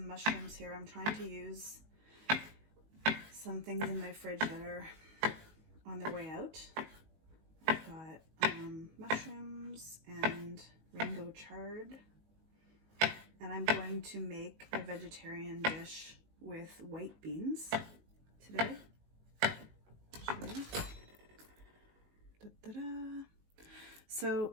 mushrooms here. I'm trying to use some things in my fridge that are on their way out. I've got mushrooms and rainbow chard, and I'm going to make a vegetarian dish with white beans today. I'll show you. Da-da-da.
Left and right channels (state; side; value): late; left; 19 ms